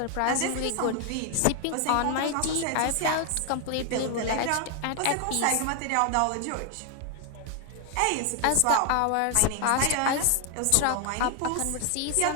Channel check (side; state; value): both; different; correlation 0.00